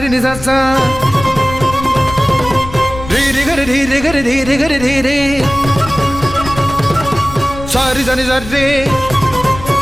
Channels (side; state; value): left; noise; rumble, 12 dB below the sound